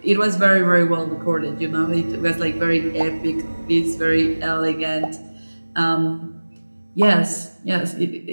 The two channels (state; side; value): inverted; both; correlation -1.00